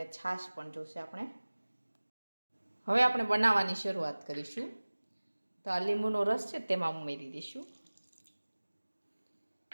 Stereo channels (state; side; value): inverted; both; correlation -1.00